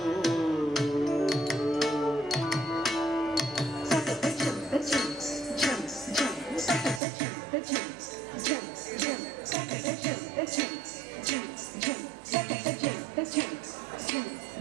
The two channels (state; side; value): drops out; left; at 7.0 s